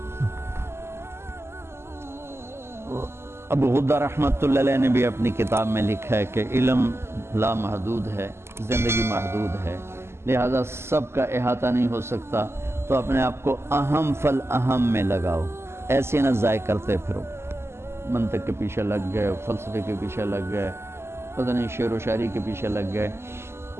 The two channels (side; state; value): left; late; 0.12 ms